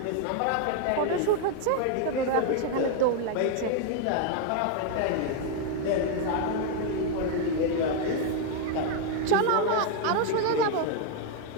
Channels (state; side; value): different; both; correlation 0.00